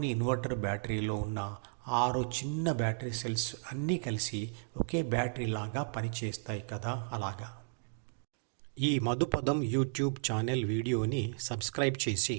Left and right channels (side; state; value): left; silent; digital silence